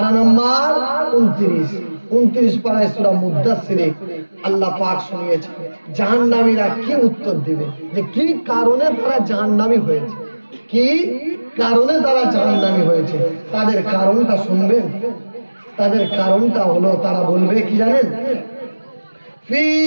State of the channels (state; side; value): inverted; both; correlation -1.00